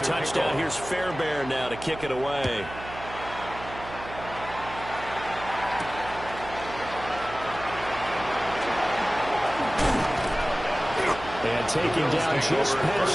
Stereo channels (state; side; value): noise; right; hum, 13 dB below the sound